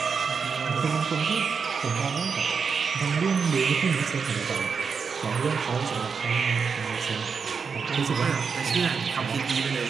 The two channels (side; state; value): left; quieter; 5.7 dB